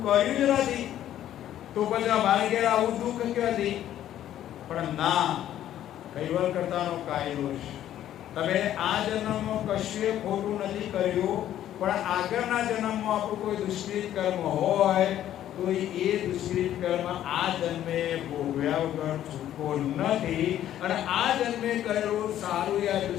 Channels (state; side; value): quieter; right; 11.8 dB